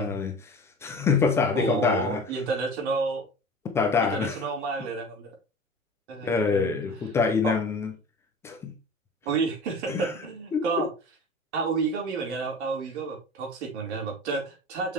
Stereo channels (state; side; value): normal; both; correlation 0.38